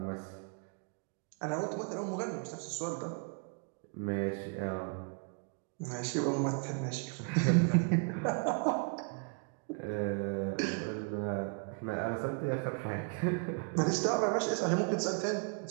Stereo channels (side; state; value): left; quieter; 37.1 dB